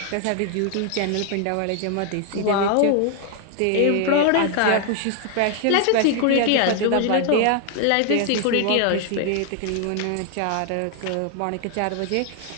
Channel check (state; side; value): different; both; correlation 0.00